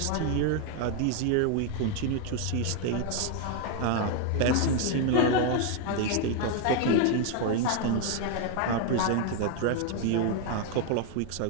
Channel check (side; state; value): both; different; correlation 0.01